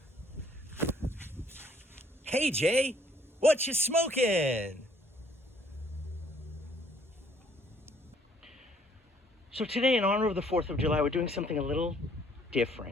Hey Jay, what you smoking? So today, in honor of the 4th of July, we're doing something a little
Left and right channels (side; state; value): both; normal; correlation 0.62